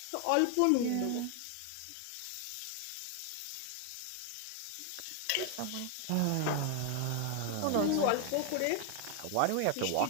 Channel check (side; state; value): both; different; correlation 0.00